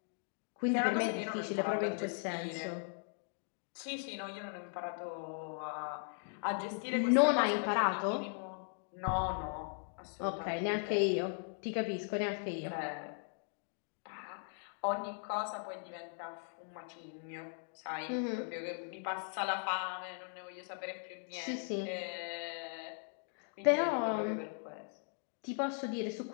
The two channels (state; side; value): silent; right; 52 dB below the other